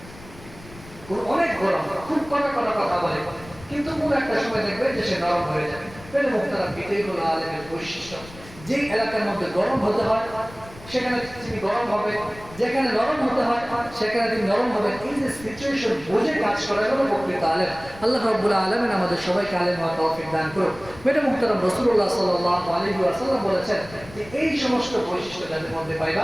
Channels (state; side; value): noise; left; rumble, 19 dB below the sound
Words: অনেক গরম, খুব কড়া কথা বলে, কিন্তু কোন একটা সময় দেখবেন যে সে নরম হয়ে যাবে। মেরে মুহতারাম, এটাই হলো আলেমের বৈশিষ্ট্য। যে এলাকার মধ্যে গরম হতে হয় সেখানে তিনি গরম হবে, যেখানে নরম হতে হয় সেখানে তিনি নরম হবেন। এই যে সিচুয়েশন বুঝে কাজ করা হলো প্রকৃত আলেম। আল্লাহ রাব্বুল আলামিন আমাদের সবাইকে আলেম হওয়ার তৌফিক দান করুন। মেরে মুহতারাম, রাসূলুল্লাহ সাল্লাল্লাহু আলাইহি ওয়াসাল্লাম বলেছেন যে এই সমস্ত বৈশিষ্ট্য যাদের মধ্যে